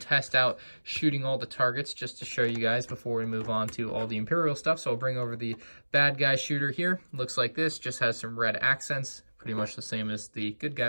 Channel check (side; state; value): both; inverted; correlation -1.00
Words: test out shooting all the targets just to show you guys before we move on to all the Imperial stuff. So I'll bring over the bad guy shooter here. Looks like this, just has some red accents, pretty much the same as the good